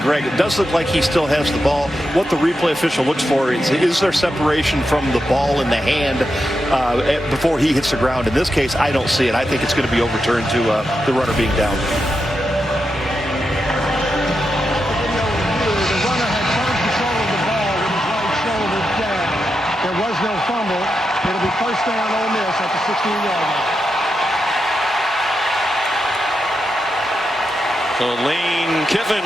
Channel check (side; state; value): both; normal; correlation 0.87